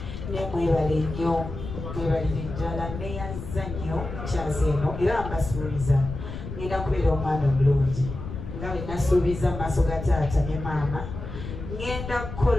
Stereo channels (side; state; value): left; noise; rumble, 8 dB below the sound